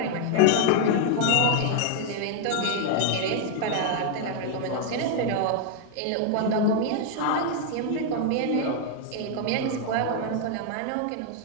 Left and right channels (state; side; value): different; both; correlation 0.00